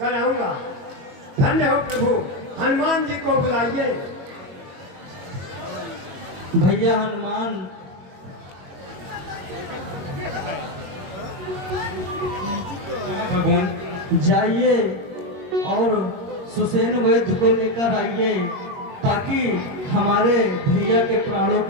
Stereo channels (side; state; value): left; late; 22 ms